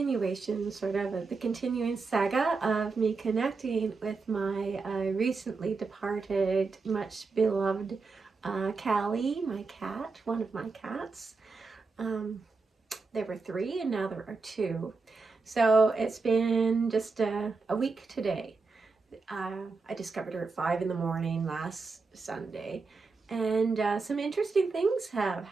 sort of the continuing saga of me connecting with my recently departed, much beloved Callie, my cat, one of my cats. There were 3 and now there are 2. So it's been just a week today. I discovered her at 5 in the morning last Sunday, and some interesting things have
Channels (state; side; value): quieter; left; 4.3 dB